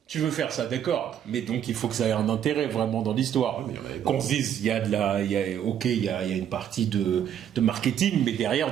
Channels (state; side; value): quieter; left; 9.6 dB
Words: tu veux faire ça, d'accord. Mais donc il faut que ça ait un intérêt vraiment dans l'histoire. Qu'on se dise, il y a une partie de marketing, mais